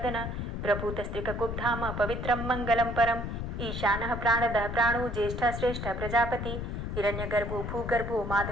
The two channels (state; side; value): noise; left; rumble, 4 dB below the sound